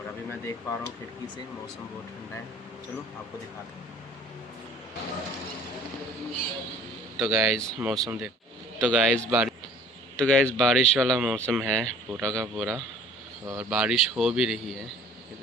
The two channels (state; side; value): normal; both; correlation 0.52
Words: अभी मैं देख पा रहा हूँ खिड़की से मौसम बहुत ठंडा है। चलो आपको दिखाते हैं। तो गाइस मौसम देख, तो गाइस बारिश वाला मौसम है पूरा का पूरा, और बारिश हो भी रही है, ये